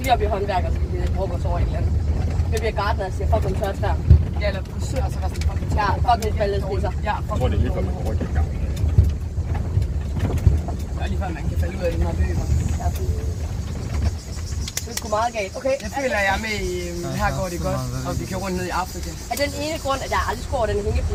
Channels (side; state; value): both; identical; correlation 1.00